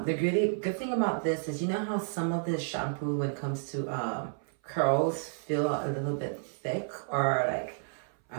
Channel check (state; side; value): silent; left; 57 dB below the other